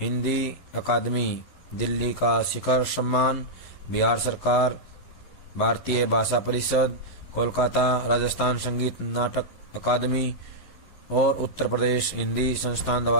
हिंदी अकादमी दिल्ली का शिखर सम्मान, बिहार सरकार, भारतीय भाषा परिषद, कोलकाता राजस्थान संगीत नाटक अकादमी और उत्तर प्रदेश हिंदी संस्थान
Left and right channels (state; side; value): late; right; 11 ms